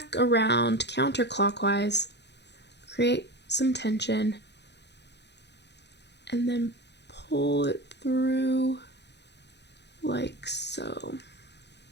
around counterclockwise, create some tension, and then pull it through like so.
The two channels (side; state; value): right; late; 0.50 ms